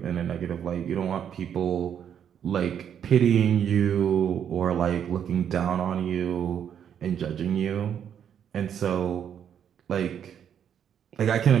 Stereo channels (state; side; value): quieter; left; 8.8 dB